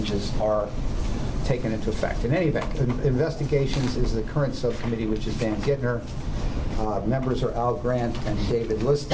are taken into effect. In any event, investigations is the current subcommittee, which is Dan Gittner. Members are Al Grant and David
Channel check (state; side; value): identical; both; correlation 1.00